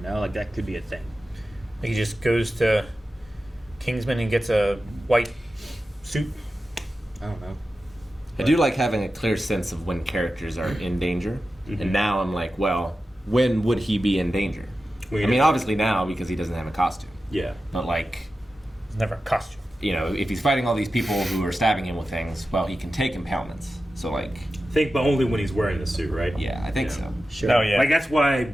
like that could be a thing. He just goes to Kingsman and gets a white suit. I don't know. I do like having a clear sense of when characters are in danger. And now I'm like, well, when would he be in danger? I mean, obviously now because he doesn't have a costume. Yeah. But like, It's never a costume. you know, if he's fighting all these people who are stabbing him with things, well, he can take impalements. So like, Think, but only when he's wearing the suit, right? yeah, I think so. Sure. Oh, yeah. Like that's why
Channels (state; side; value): normal; both; correlation 0.93